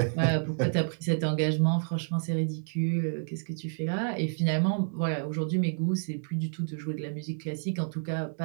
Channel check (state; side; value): silent; left; digital silence